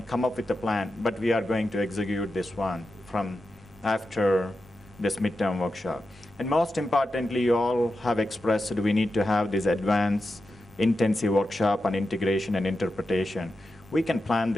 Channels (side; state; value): both; normal; correlation 0.90